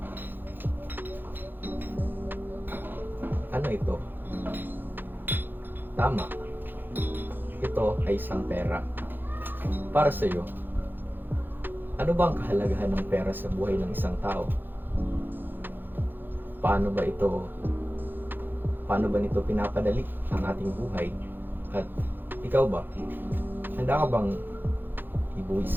Ano ito? Tama. Ito ay isang pera. Para sa iyo, ano ba ang kahalagahan ng pera sa buhay ng isang tao? Paano ba nito pinapadali ang ating buhay? At ikaw ba? Handa ka bang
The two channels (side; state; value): left; late; 0.094 ms